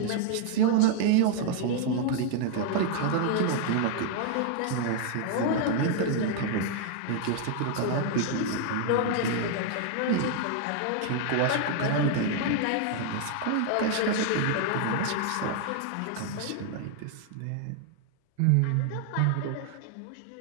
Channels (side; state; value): both; different; correlation 0.00